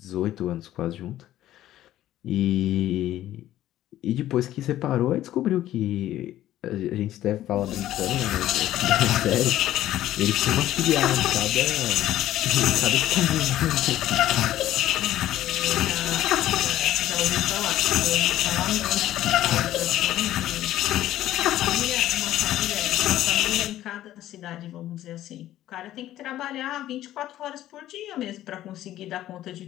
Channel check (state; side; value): quieter; right; 13.5 dB